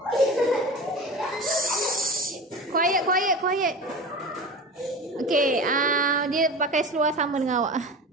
Quiet. Okay, dia pakai seluar sama dengan awak.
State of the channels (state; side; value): normal; both; correlation 0.32